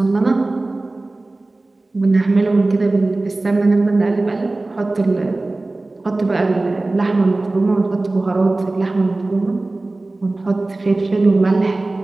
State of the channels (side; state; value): left; quieter; 3.0 dB